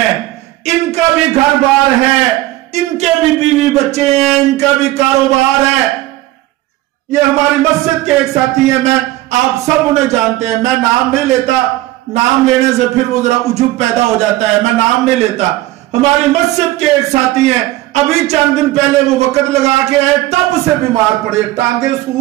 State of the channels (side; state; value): left; quieter; 16.7 dB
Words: ان کا بھی گھر بار ہے، ان کے بھی بیوی بچے ہیں، ان کا بھی کاروبار ہے۔ یہ ہماری مسجد کے ایک ساتھی ہیں، میں آپ سب انہیں جانتے ہیں، میں نام نہیں لیتا، نام لینے سے پھر وہ ذرا عجب پیدا ہو جاتا ہے، میں نام نہیں لیتا۔ ہماری مسجد کے ایک ساتھی ہیں، ابھی چند دن پہلے وہ وقت لگا کے آئے، تب سے بیمار پڑے، ٹانگیں